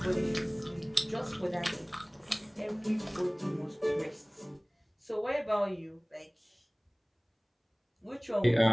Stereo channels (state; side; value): identical; both; correlation 1.00